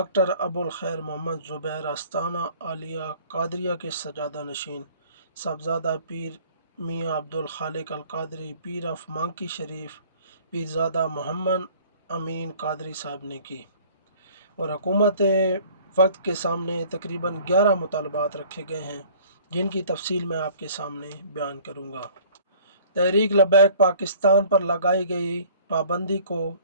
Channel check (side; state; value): both; inverted; correlation -0.51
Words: अबुल खैर मोहम्मद ज़ुबैर आस्ताना आलिया कादरिया के सजादा नशीन साहबजादा पीर मियाँ अब्दुल खालिक अल कादरी, पीर ऑफ मांकी शरीफ पीरज़ादा मोहम्मद अमीन कादरी साहब ने की और हुकूमत वक्त के सामने तकरीबन 11 मुतालबात रखे गए हैं जिनकी तफसील मैं आपके सामने बयान करूँगा। तहरीक लबैक पाकिस्तान पर लगाई गई पाबंदी को